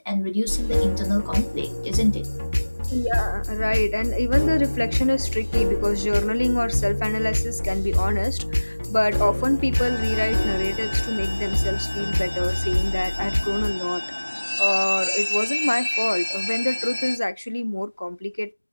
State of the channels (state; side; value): inverted; both; correlation -1.00